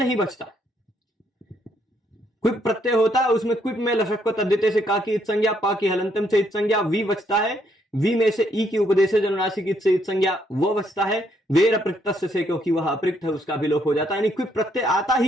बचता। क्विप प्रत्यय होता है उसमें क्विप में लशक को तद्धिते से का की इत संज्ञा, पा की हलंतम से इत संज्ञा, वी बचता है, वी में से ई की उपदेश जनुनासिक इत से इत संज्ञा वो बचता है, वेर अपृक्त से क्योंकि वह अपृक्त है उसका भी लोप हो जाता है। यानी क्विप प्रत्यय आता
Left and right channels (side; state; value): both; normal; correlation 0.72